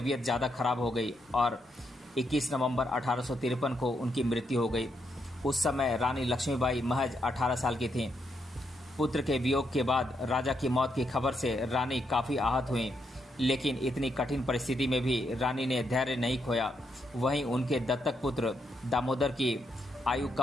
ज़्यादा खराब हो गई और 21 नवंबर 1853 को उनकी मृत्यु हो गई। उस समय रानी लक्ष्मीबाई महज 18 साल की थीं। पुत्र के वियोग के बाद राजा की मौत की खबर से रानी काफ़ी आहत हुई, लेकिन इतनी कठिन परिस्थिति में भी रानी ने धैर्य नहीं खोया। वहीं उनके दत्तक पुत्र दामोदर की आयु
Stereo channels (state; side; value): normal; both; correlation 0.79